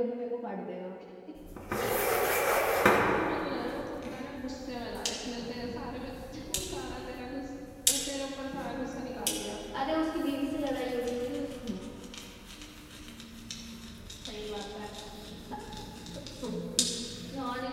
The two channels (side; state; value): both; identical; correlation 1.00